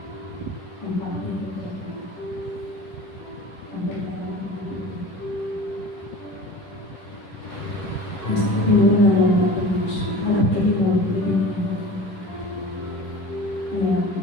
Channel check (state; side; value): late; right; 10 ms